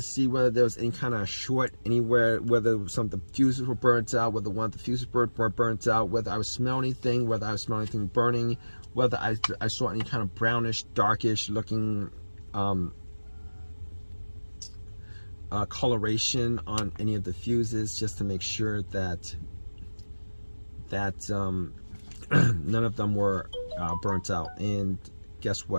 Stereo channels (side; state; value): both; inverted; correlation -1.00